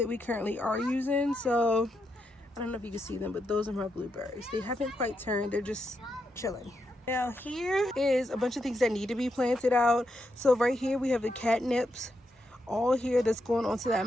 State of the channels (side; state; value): both; normal; correlation 0.83